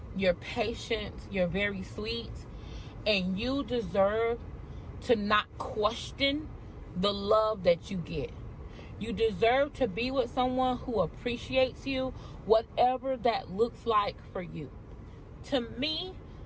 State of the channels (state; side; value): identical; both; correlation 1.00